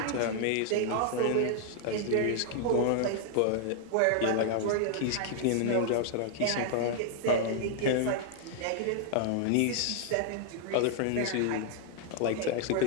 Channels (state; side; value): different; both; correlation -0.01